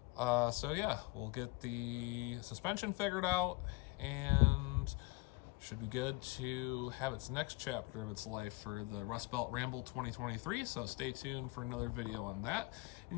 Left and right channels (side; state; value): right; quieter; 24.7 dB